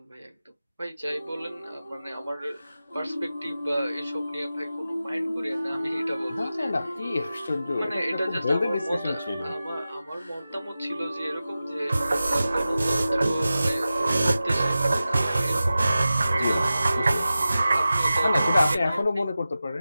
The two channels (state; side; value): inverted; both; correlation -0.94